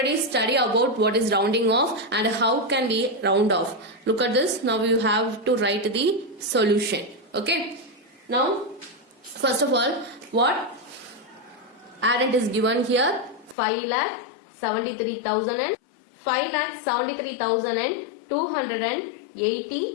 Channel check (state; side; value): drops out; right; at 13.6 s